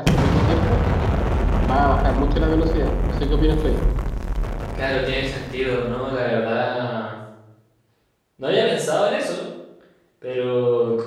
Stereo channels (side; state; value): both; identical; correlation 1.00